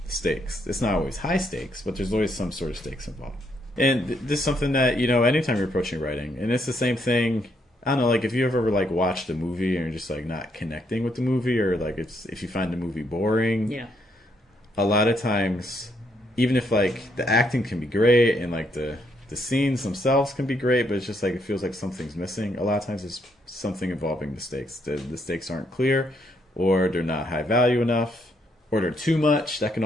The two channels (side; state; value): both; normal; correlation 0.74